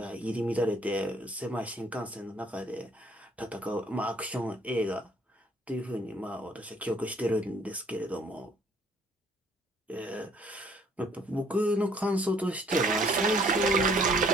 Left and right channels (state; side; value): normal; both; correlation 0.61